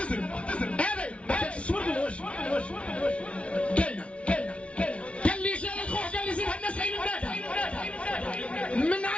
هذا تصور بالوجه كاينه قال لي جا الخوخ قال لي زيد الناس عين النادى من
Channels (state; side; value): late; right; 0.061 ms